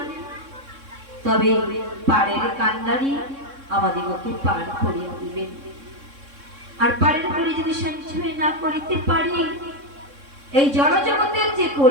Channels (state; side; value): late; left; 3.6 ms